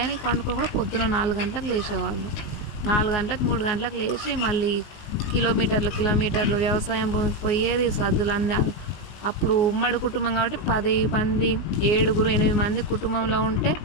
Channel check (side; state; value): right; late; 19 ms